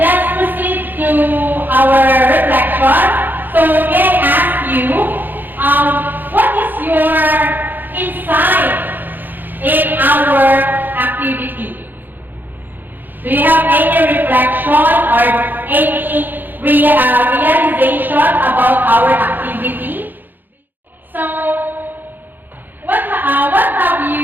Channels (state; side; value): late; left; 0.088 ms